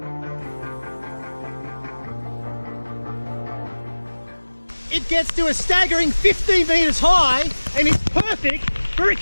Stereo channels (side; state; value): both; inverted; correlation -1.00